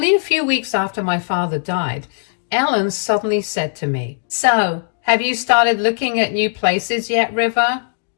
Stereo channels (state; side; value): silent; right; digital silence